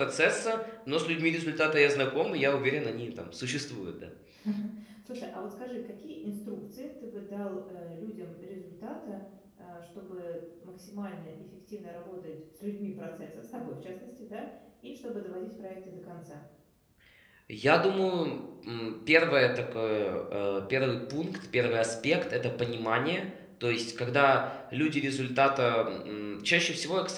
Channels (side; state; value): both; identical; correlation 1.00